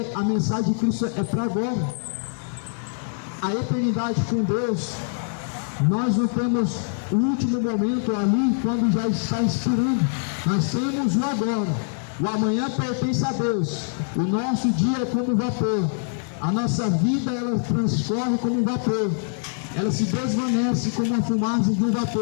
a mensagem de Cristo é para agora. A eternidade com Deus, nós não temos o último momento ali quando já está expirando. Nós temos o agora. O amanhã pertence a Deus. O nosso dia é como vapor. A nossa vida, ela transcorre como um vapor. Ela se desvanece como a fumaça de um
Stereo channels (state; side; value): silent; right; digital silence